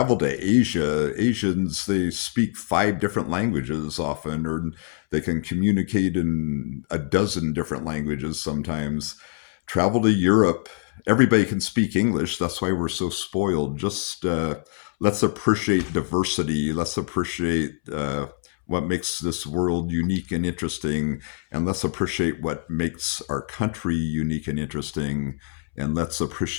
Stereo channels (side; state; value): right; silent; 62 dB below the other